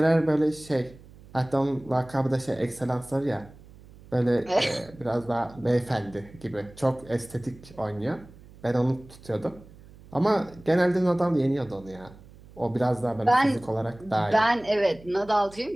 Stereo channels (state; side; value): noise; right; hum, 22 dB below the sound